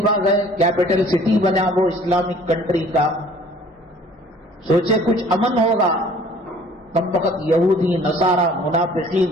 گئے، کیپٹل سٹی بنا وہ اسلامک کنٹری کا. سوچے کچھ امن ہوگا. کم وقت یہودی، نصارہ،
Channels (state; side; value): normal; both; correlation 0.52